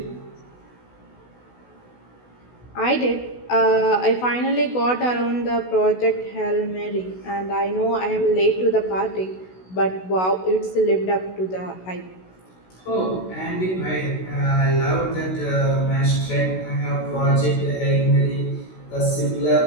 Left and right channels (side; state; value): right; late; 16 ms